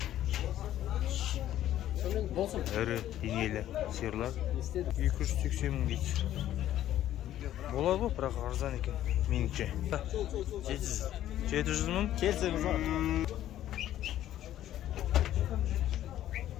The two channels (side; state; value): right; quieter; 12.5 dB